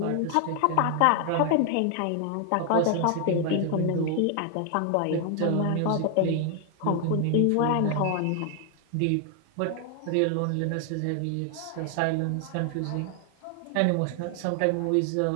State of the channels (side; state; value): both; different; correlation 0.00